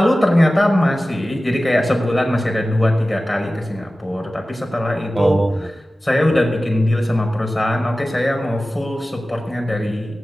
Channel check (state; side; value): normal; both; correlation 0.96